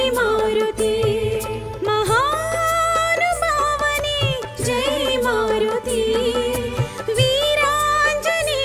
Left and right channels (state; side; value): identical; both; correlation 1.00